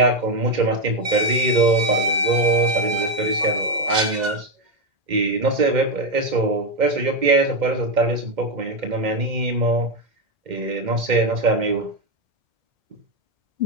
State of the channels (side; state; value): left; late; 2.0 ms